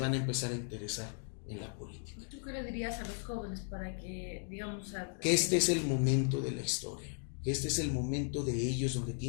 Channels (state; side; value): silent; right; 54 dB below the other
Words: a empezar a interesar en la política. ¿Tú qué le dirías a los jóvenes para que, digamos, que este es el momento de la historia, que este es el momento de ellos donde